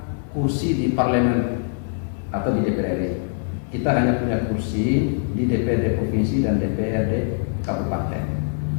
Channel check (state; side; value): silent; right; 64 dB below the other